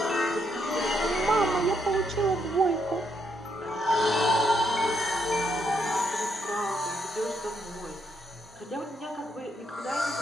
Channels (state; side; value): normal; both; correlation 0.76